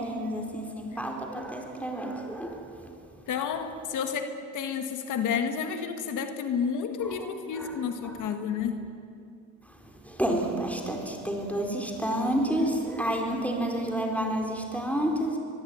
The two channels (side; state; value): both; normal; correlation 0.44